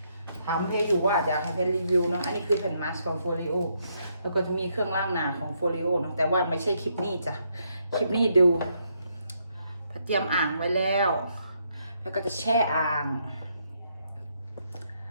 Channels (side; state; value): both; inverted; correlation -0.75